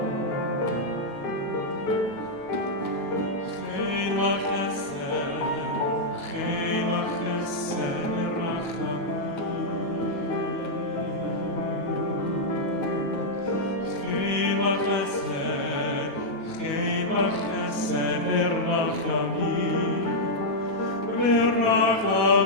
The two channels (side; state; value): right; late; 9.2 ms